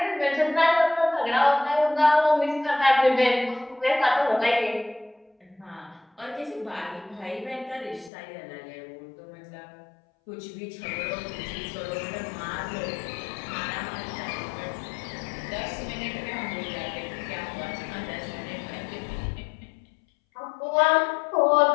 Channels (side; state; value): right; drops out; at 8.1 s